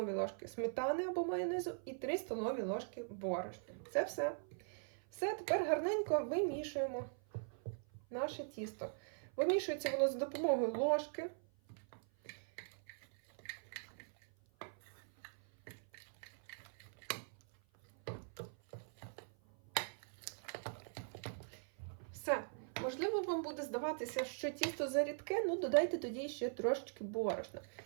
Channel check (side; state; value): left; silent; 50 dB below the other